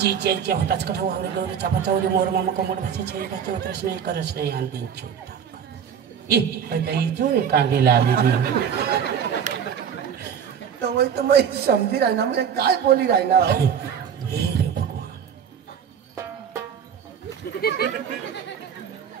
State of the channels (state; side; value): quieter; left; 7.9 dB